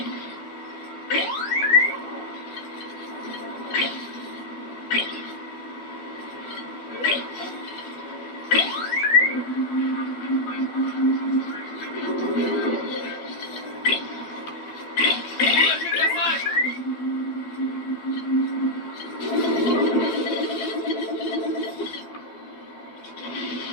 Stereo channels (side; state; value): right; late; 12 ms